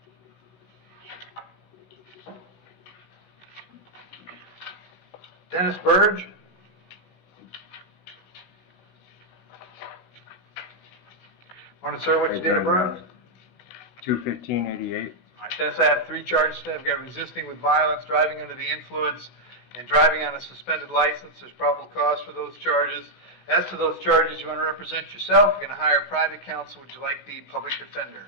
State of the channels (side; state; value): right; late; 16 ms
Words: Dennis Burge. Morning, sir. What's your date of birth? 2/15/88. All right, Dennis, I have 3 charges today. I've got resisting with violence, driving under the influence, and driving on a suspended license. There's probable cause for those charges. As to those charges, you want to represent yourself. You're going to hire private counsel. Would you like the public defender?